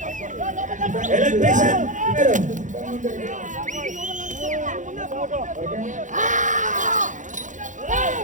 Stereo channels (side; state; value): left; late; 0.36 ms